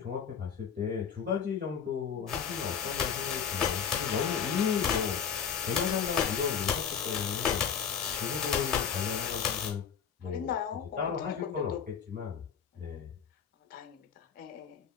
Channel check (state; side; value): quieter; right; 7.3 dB